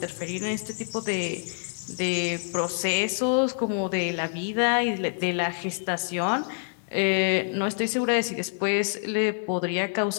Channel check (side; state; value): right; silent; 60 dB below the other